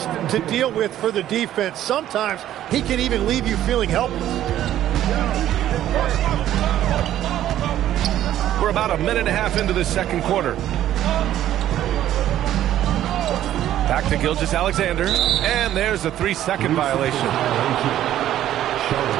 to deal with for the defense. Sometimes he can even leave you feeling helpless. We're about a minute and a half into the second quarter. Back to Gilgeous-Alexander, and there's a 3-second violation.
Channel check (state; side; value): quieter; left; 12.3 dB